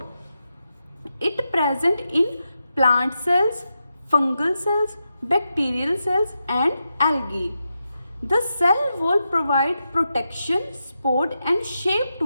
It present in plant cells, fungal cells, bacterial cells and algae. The cell wall provide protection, support and shape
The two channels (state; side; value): inverted; both; correlation -0.87